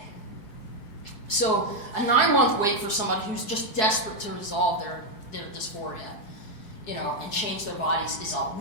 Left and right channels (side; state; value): right; late; 4.7 ms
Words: So a 9-month wait for somebody who's just desperate to resolve their dysphoria, and change their bodies it's